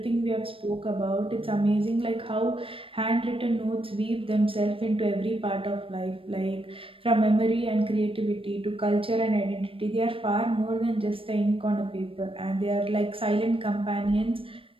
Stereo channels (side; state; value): left; late; 0.26 ms